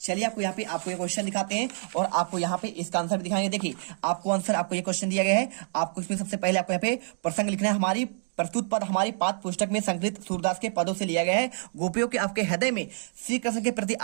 चलिए आपको यहाँ पे आपको ये क्वेश्चन दिखाते हैं और आपको यहाँ पे इसका आंसर भी दिखाएंगे। देखिए आपको आंसर आपको ये क्वेश्चन दिया गया है, आपको इसमें सबसे पहले आपको यहाँ पे प्रसंग लिखना है। हमारी प्रस्तुत पद हमारी पाठ्य पुस्तक में संकलित सूरदास के पदों से लिया गया है। गोपियों के आपके हृदय में श्री कृष्ण के प्रति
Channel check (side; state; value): left; silent; digital silence